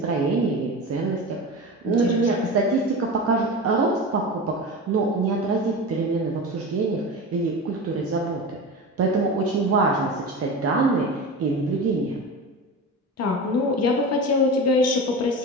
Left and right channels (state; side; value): normal; both; correlation 0.28